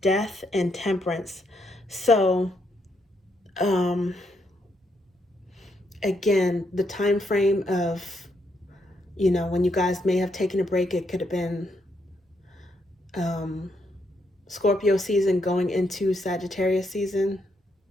and temperance. So, again, the time frame of, when you guys may have taken a break, it could have been Scorpio season going into Sagittarius season.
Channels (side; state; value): both; normal; correlation 0.77